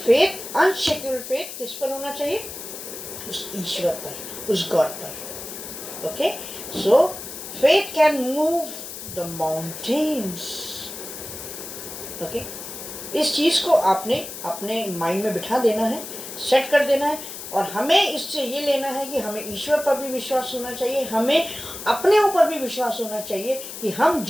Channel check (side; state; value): left; noise; hiss, 10 dB below the sound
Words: फेथ, अनशेकेबल फेथ किस पर होना चाहिए? उस ईश्वर पर, उस गॉड पर. Okay, so faith can move the mountains. Okay, इस चीज़ को आपने अपने माइंड में बिठा देना है, सेट कर देना है. और हमें इससे ये लेना है कि हमें ईश्वर पर भी विश्वास होना चाहिए, हमें अपने ऊपर भी विश्वास होना चाहिए कि हम